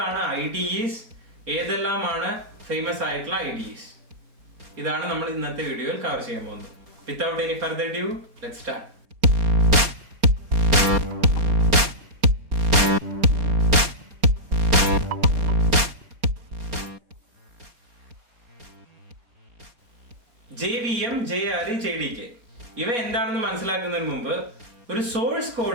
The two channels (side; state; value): left; late; 4.3 ms